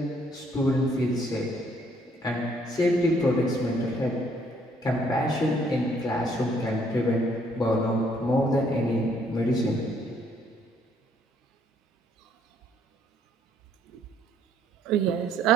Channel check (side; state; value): both; normal; correlation 0.66